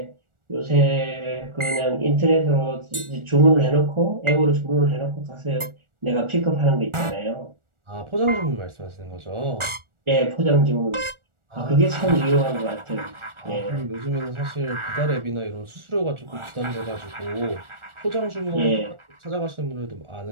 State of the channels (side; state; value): left; late; 1.4 ms